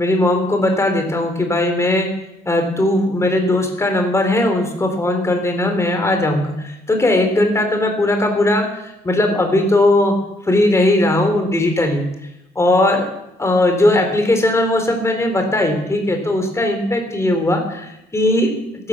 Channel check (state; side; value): normal; both; correlation 0.69